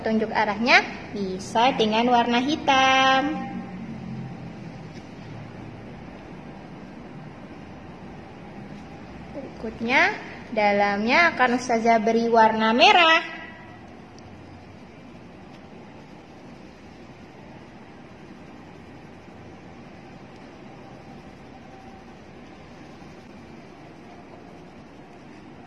arahnya bisa dengan warna hitam. Berikutnya dalamnya akan Ustazah beri warna merah.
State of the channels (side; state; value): both; identical; correlation 1.00